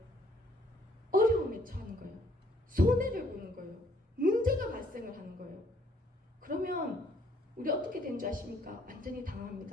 어려움에 처하는 거예요. 손해를 보는 거예요. 문제가 발생을 하는 거예요. 그러면 우리 어떻게 된 줄 아십니까? 완전히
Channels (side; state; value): both; normal; correlation 0.65